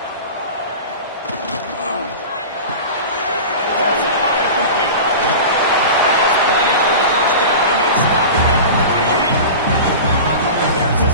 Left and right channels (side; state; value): both; inverted; correlation -0.32